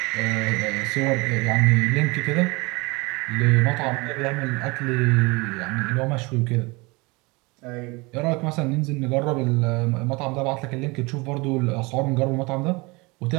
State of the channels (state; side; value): quieter; left; 25.8 dB